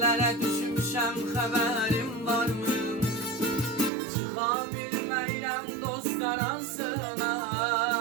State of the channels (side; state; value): left; drops out; at 3.9 s